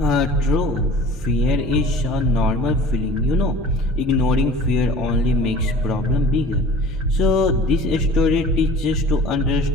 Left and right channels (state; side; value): normal; both; correlation 0.44